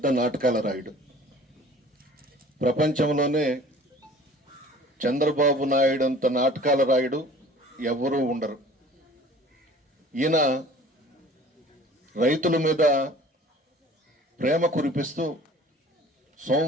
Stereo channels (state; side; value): normal; both; correlation 0.47